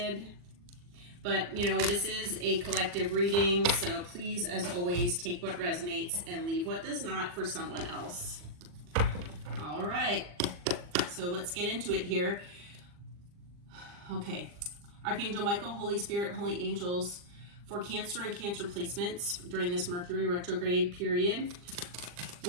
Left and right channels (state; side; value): late; left; 40 ms